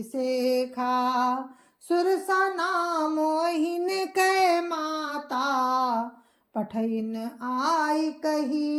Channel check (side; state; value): both; identical; correlation 1.00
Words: सुरसा नाम मोहिन कै माता, पठइन आई